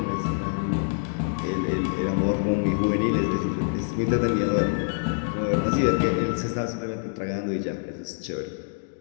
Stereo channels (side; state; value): right; silent; digital silence